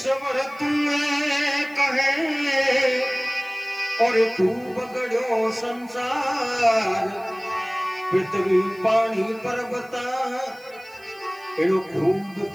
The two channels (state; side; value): noise; right; hiss, 27 dB below the sound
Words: तुम्हें कहे और खूब गढ़ो संसार, पृथ्वी पानी पर्वता एनो खूब